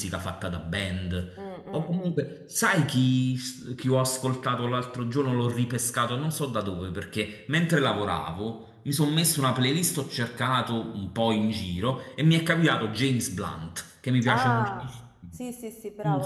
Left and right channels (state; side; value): identical; both; correlation 1.00